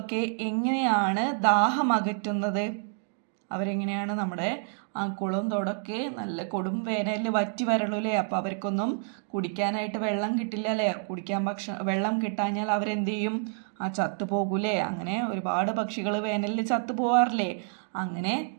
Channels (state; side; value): silent; left; 59 dB below the other